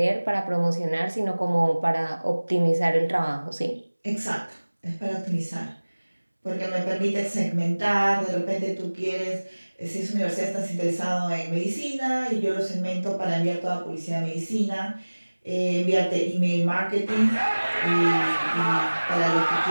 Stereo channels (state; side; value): inverted; both; correlation -1.00